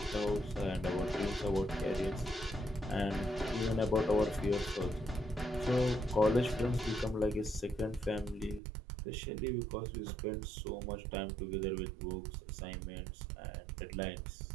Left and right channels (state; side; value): drops out; left; at 8.6 s